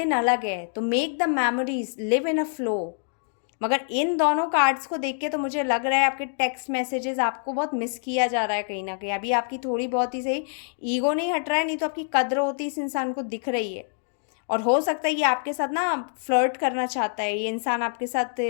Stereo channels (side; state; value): right; silent; digital silence